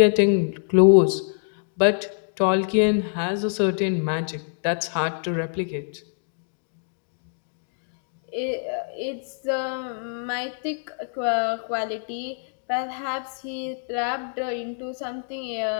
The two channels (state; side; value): silent; right; digital silence